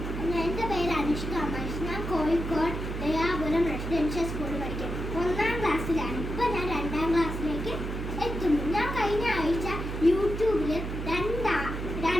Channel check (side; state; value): right; noise; hum, 5 dB below the sound